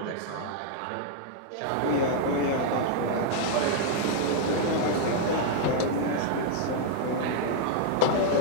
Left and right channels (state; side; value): different; both; correlation -0.01